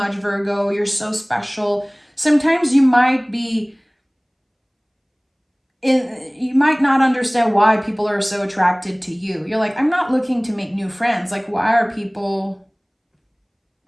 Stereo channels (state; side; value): identical; both; correlation 1.00